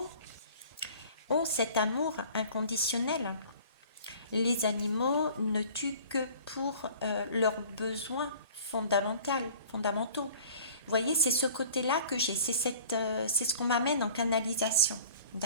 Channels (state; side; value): inverted; both; correlation -0.47